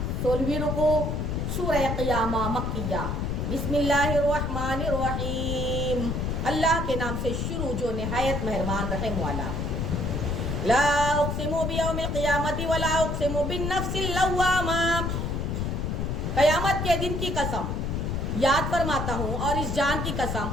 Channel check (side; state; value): left; noise; rumble, 1 dB below the sound